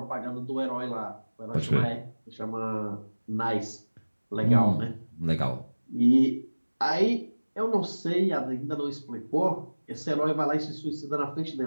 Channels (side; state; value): both; inverted; correlation -1.00